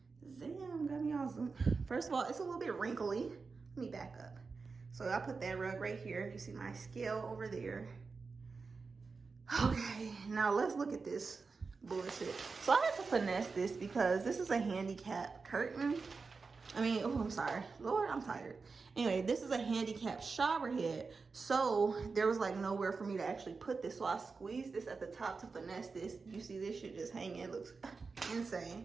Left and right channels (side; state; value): left; quieter; 4.5 dB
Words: Damn, got me awesome. First of all, it's a little bit wrinkly. Let me back up. So I put that rug right here. You see my scale over there. Okay, now let's look at this bullshit. So I had to finesse this because this is a handicap curtain. Oh, I'm sorry. Lord, I'm tired. Anyway, this is a handicap shower head. So there was like nowhere for me to actually put this. So I squeezed this at the top to finesse this. You see this shit just hanging. It looks